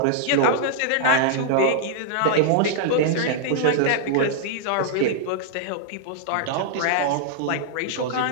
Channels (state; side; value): different; both; correlation -0.01